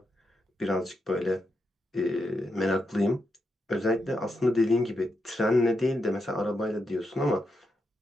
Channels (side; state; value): both; normal; correlation 0.84